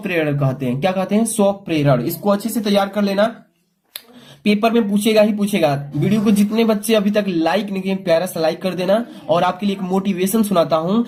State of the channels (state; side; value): identical; both; correlation 1.00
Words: कहते हैं। क्या कहते हैं, स्वप्रेरण। इसको अच्छे से तैयार कर लेना, पेपर में पूछेगा ही पूछेगा। वीडियो को जितने बच्चे अभी तक लाइक नहीं किए, प्यारा सा लाइक कर देना। और आपके लिए एक मोटिवेशन सुनाता हूं